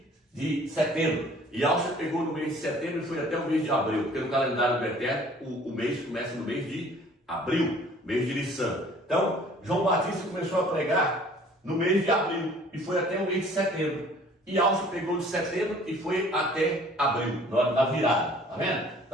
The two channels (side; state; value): both; normal; correlation 0.53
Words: de setembro. Yahshua pegou no mês de setembro e foi até o mês de abril, porque no calendário do Eterno o mês começa no mês de abril, mês de Nissan. Então, João Batista começou a pregar no mês de abril e foi até o mês de setembro. E Yahshua pegou de setembro e foi até abril, na hora da virada, tá vendo?